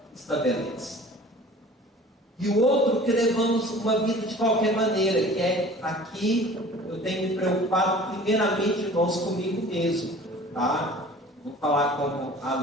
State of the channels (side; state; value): both; normal; correlation 0.45